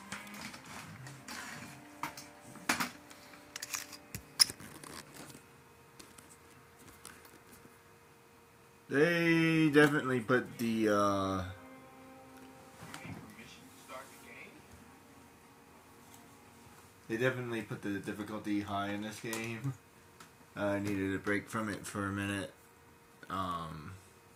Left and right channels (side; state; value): both; identical; correlation 1.00